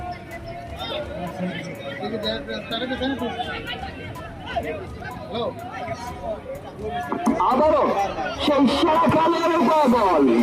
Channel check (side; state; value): both; identical; correlation 1.00